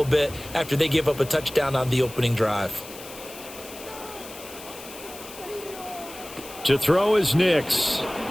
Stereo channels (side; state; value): left; noise; hiss, 15 dB below the sound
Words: bit after they give up a touchdown on the opening drive. To throw is Nix.